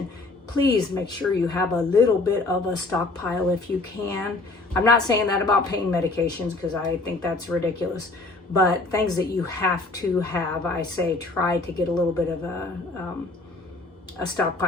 Please make sure you have a little bit of a stockpile if you can. I'm not saying that about pain medications because I think that's ridiculous. But things that you have to have, I say try to get a little bit of a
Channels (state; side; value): quieter; right; 3.2 dB